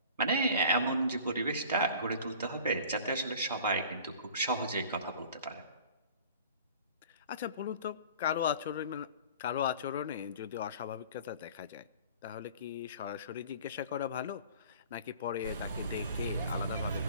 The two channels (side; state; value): both; inverted; correlation -0.45